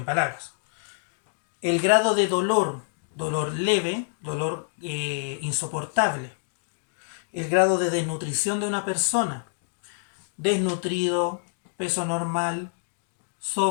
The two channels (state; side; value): silent; right; digital silence